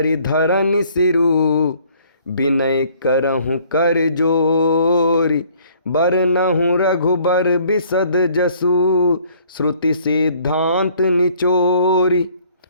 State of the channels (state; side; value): inverted; both; correlation -0.59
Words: धरन सिरु, विनय करहु कर जोरी। बरनहु रघुबर बिसद जसु, श्रुति सिद्धांत निचोरी।